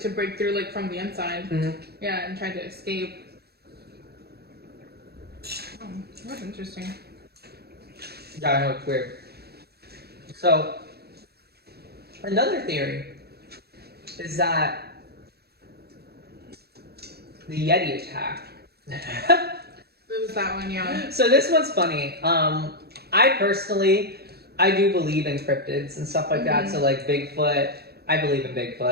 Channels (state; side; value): late; left; 0.46 ms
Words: break through like from the inside. Yeah, and try to escape. Oh, that's interesting. Yeah, I know, it's weird. So, another theory is that the Yeti Attack. It was that one, yeah. So this one's funny. I do believe in cryptids and stuff like that. So like Bigfoot, I believe in